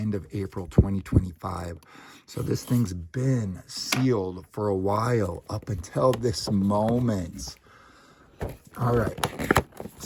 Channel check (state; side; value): identical; both; correlation 1.00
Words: of April 2025. So this thing's been sealed for a while up until this moment. All right,